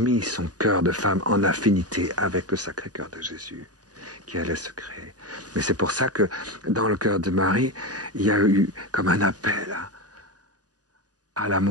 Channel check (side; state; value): left; late; 0.68 ms